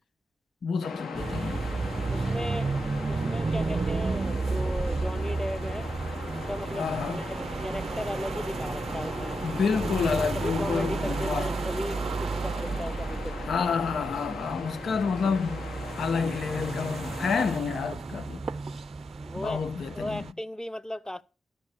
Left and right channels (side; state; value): both; normal; correlation 0.85